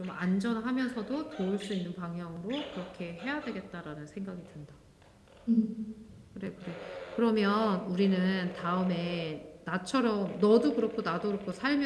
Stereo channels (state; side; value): identical; both; correlation 1.00